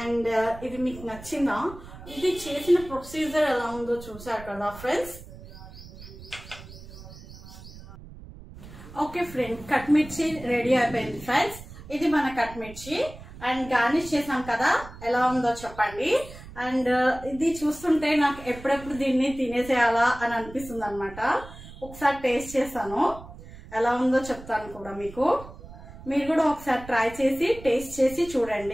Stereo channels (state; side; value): noise; right; rumble, 16 dB below the sound